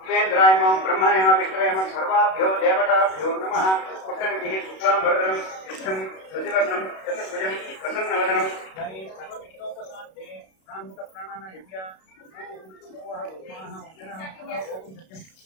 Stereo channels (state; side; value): late; right; 32 ms